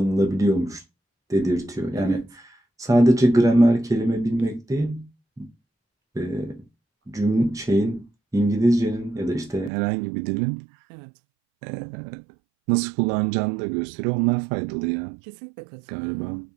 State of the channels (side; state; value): left; drops out; at 9.7 s